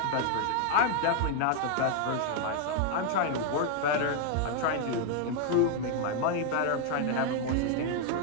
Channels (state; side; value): different; both; correlation 0.00